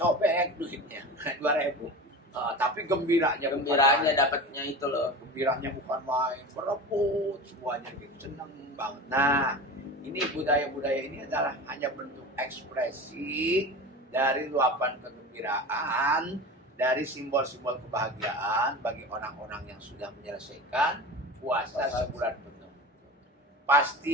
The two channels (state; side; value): normal; both; correlation 0.31